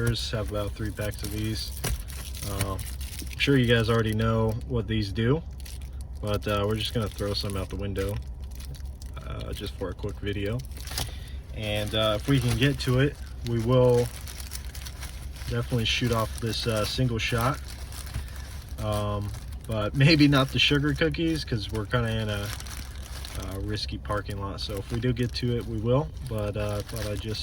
Have about 3 packs of these. I'm sure you guys already know what these do, but we're just gonna throw some out the window just for a quick video. And if we can get to it, we will definitely shoot off this single shot. But maybe not the sugar cookies because we're kind of in a risky parking lot. So if we do get to it, we will. But I thought I'd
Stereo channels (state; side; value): identical; both; correlation 1.00